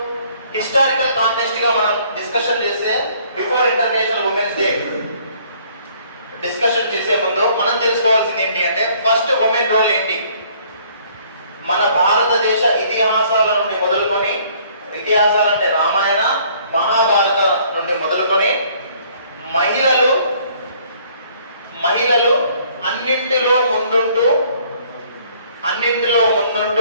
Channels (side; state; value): both; inverted; correlation -0.60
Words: హిస్టారికల్ కాంటెక్స్ట్ గా మనం డిస్కషన్ చేస్తే before international women's day discussion చేసే ముందు మనం తెలుసుకోవాల్సింది ఏంటి అంటే ఫస్ట్ ఉమెన్ రోల్ ఏంటి. మన భారతదేశ ఇతిహాసాల నుండి మొదలుకొని, ఇతిహాసాలంటే రామాయణ మహాభారత నుండి మొదలుకొని మహిళలు అన్నింటిలో